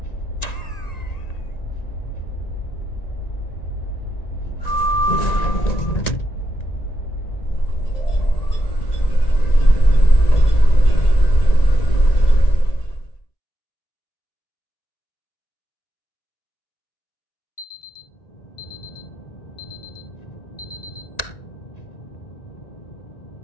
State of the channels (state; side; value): late; right; 1.9 ms